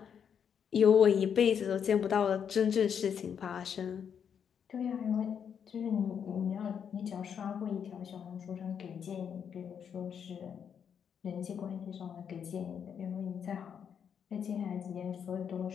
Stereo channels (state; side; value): quieter; right; 7.7 dB